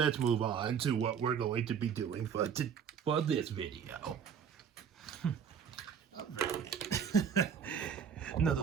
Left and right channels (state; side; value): quieter; left; 7.5 dB